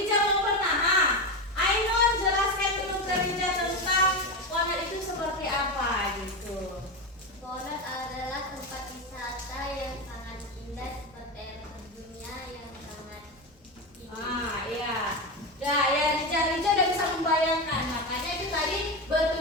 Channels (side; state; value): both; normal; correlation 0.16